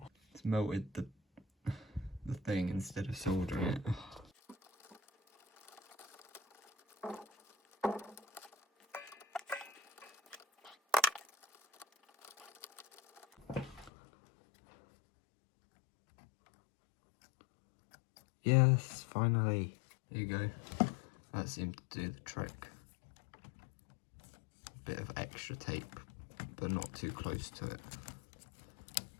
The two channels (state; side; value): drops out; right; at 13.9 s